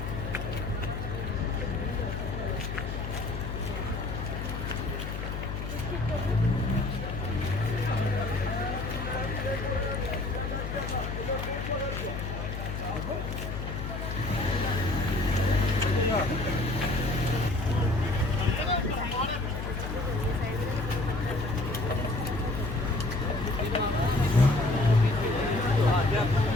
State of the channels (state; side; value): noise; left; hum, 5 dB below the sound